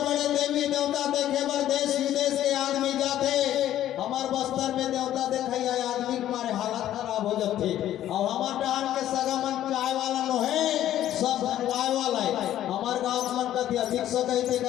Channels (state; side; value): quieter; right; 12.4 dB